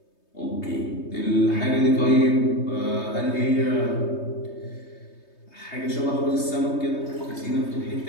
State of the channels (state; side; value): late; right; 3.2 ms